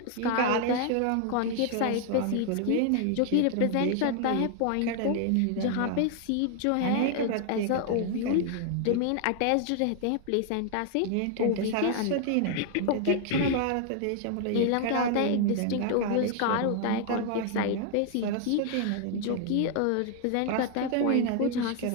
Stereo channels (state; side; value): different; both; correlation 0.00